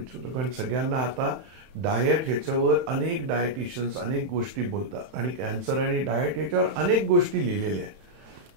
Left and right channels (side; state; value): left; late; 31 ms